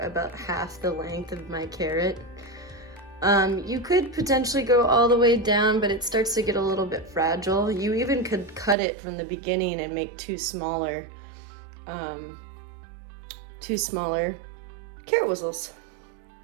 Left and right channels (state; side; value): drops out; left; at 8.8 s